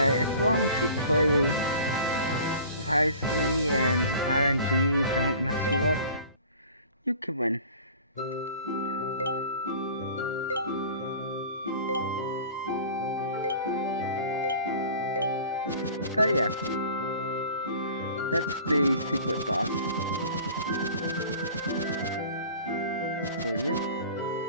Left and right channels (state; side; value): inverted; both; correlation -0.44